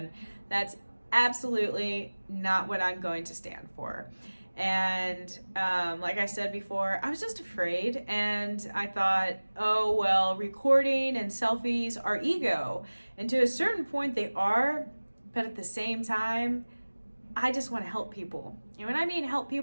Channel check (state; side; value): inverted; both; correlation -1.00